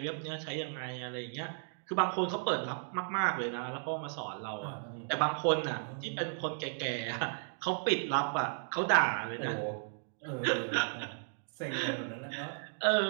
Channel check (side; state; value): left; silent; digital silence